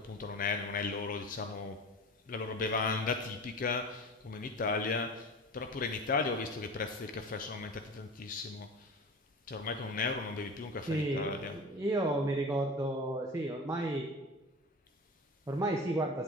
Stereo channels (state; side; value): normal; both; correlation 0.33